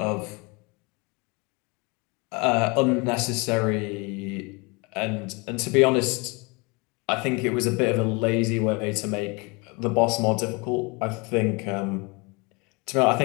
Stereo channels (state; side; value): quieter; right; 28.8 dB